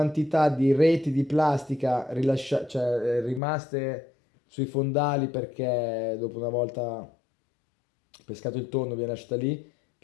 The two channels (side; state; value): right; drops out; at 3.4 s